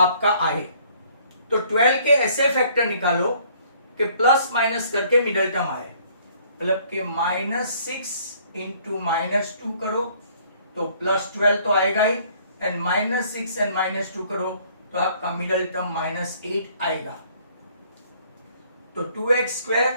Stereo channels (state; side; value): inverted; both; correlation -0.60